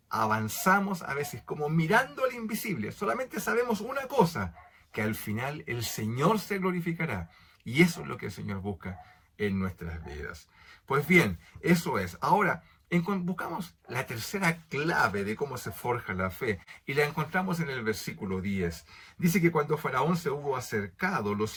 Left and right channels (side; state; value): both; identical; correlation 1.00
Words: Avanzamos a veces como mirando al invisible. Solamente sabemos una cosa, que al final el Señor se glorificará. Y eso es lo que el Señor busca en nuestras vidas. Pues bien, eso es. Ahora, buscamos la tercera clave de cómo se forja la fe y la encontramos en el versículo 10. Dice que cuando Faraón se hubo acercado,